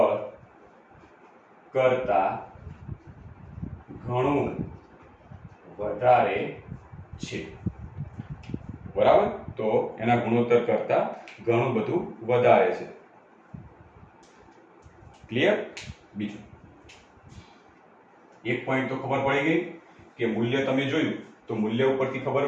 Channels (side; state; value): both; identical; correlation 1.00